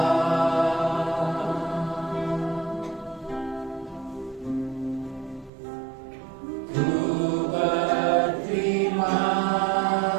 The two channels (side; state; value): left; drops out; at 5.5 s